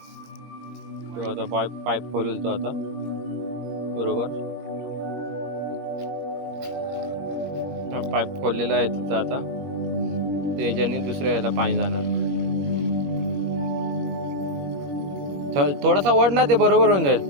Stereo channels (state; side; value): late; left; 21 ms